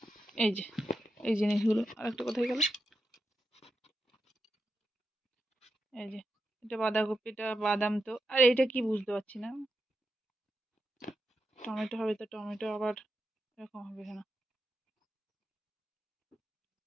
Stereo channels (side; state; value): both; normal; correlation 0.87